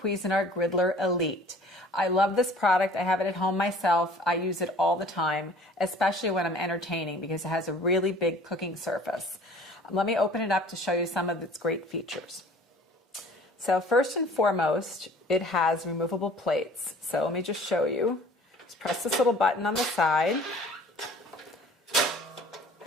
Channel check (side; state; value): both; normal; correlation 0.49